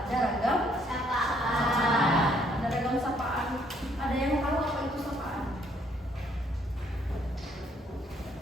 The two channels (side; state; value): both; normal; correlation 0.67